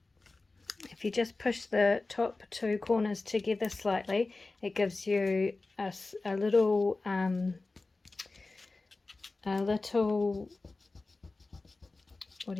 If you just push the top two corners together slightly, it gives you a little, what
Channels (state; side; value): quieter; right; 3.4 dB